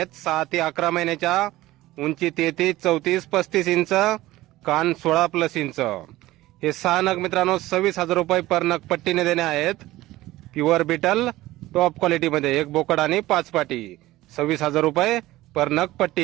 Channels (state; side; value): quieter; left; 17.1 dB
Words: 6 ते 11 महिन्याच्या, उंची 33, 34, 35 इंच, कान 16+ इंच. हे 6 नग मित्रांनो 26,000 रुपये पर नग पट्टीने देणे आहेत. प्युअर बिटल टॉप क्वालिटी मध्ये एक बोकड आणि 5 पाटी, 26,000 रुपये पर नग पट्टी.